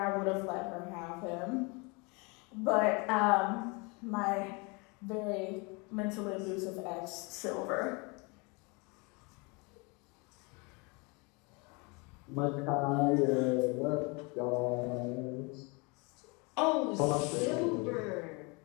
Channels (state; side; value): quieter; right; 29.8 dB